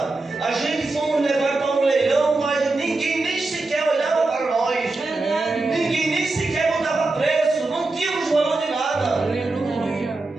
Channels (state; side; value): quieter; left; 3.3 dB